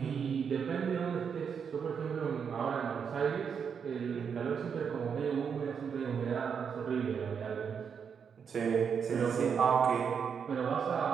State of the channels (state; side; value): quieter; left; 6.8 dB